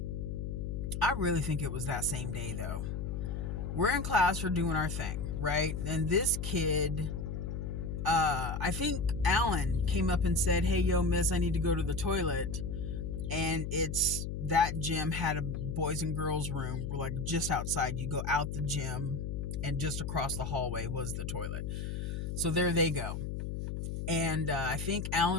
I really think it was that same day though. We're in class, we're doing our thing, right? And this kid, I think Alan came up and said, hey, yo, miss, I need to go to the toilet. And it's that gym had a boys and girls room, like just outside. You go out the gym and just across the hallway was the toilet. So there they go. And I think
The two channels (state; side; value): noise; left; hum, 4 dB below the sound